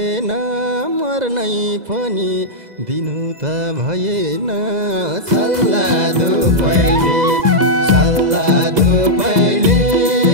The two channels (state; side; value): late; left; 2.0 ms